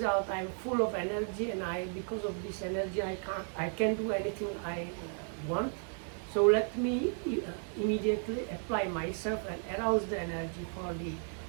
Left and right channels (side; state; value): left; silent; 55 dB below the other